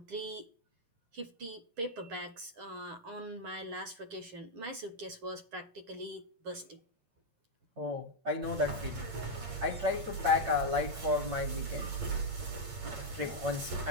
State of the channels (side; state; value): left; late; 8.7 ms